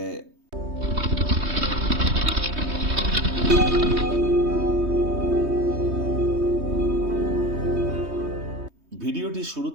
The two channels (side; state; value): left; late; 3.2 ms